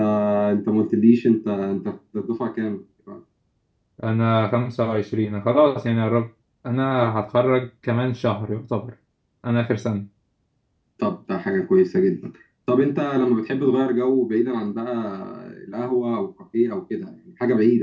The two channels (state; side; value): identical; both; correlation 1.00